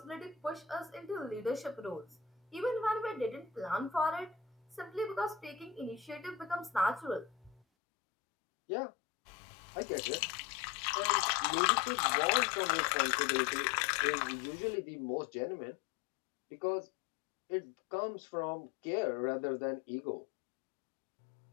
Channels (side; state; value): right; drops out; at 7.6 s